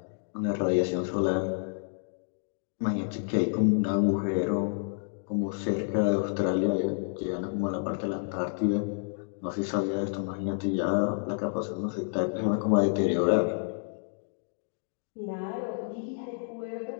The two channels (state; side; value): silent; right; digital silence